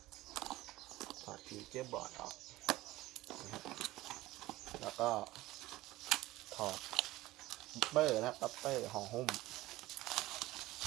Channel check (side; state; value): left; quieter; 17.6 dB